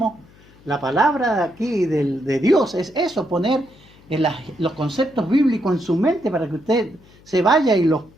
la palabra aquí de Dios es eso, poner los conceptos bíblicos en su mente para que usted se vaya y los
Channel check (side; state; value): left; noise; hum, 26 dB below the sound